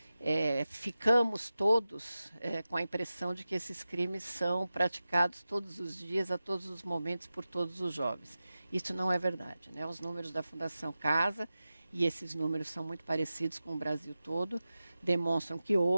ficamos todos com a impressão de que esses crimes são praticados todos os dias, a todos os momentos, por todos os jovens. Isso não é verdade, né? Os números da Fundação Casa, e esses números são muito parecidos com o Brasil todo, demonstram que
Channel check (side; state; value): both; inverted; correlation -0.94